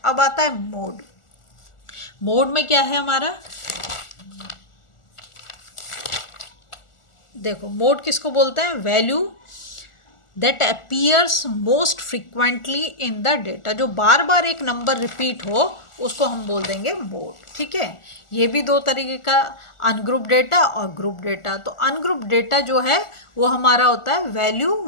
अब आता है मोड। मोड में क्या है हमारा, देखो मोड किसको बोलते हैं, value that appears most frequently in the data, जो बार बार एक नंबर रिपीट हो उसको हम बोल देंगे मोड। ठीक है, ये भी दो तरीके का, अनग्रुप डेटा और ग्रुप डेटा। तो अनग्रुप डेटा जो है वो हमारा होता है value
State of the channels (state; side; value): late; right; 1.4 ms